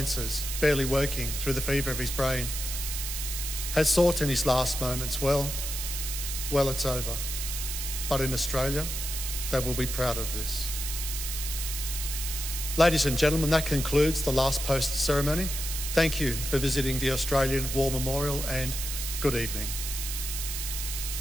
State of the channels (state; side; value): noise; right; hiss, 4 dB below the sound